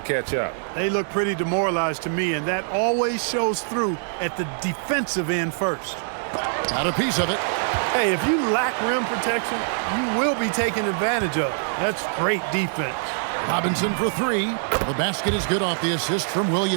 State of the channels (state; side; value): silent; left; digital silence